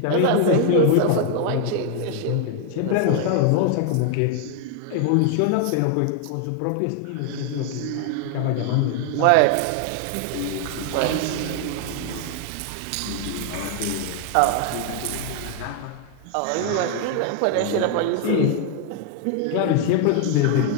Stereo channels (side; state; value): both; different; correlation 0.00